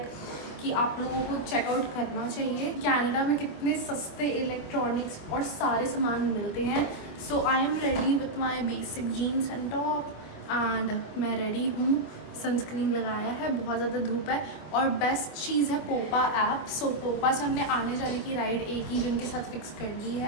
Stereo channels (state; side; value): late; right; 25 ms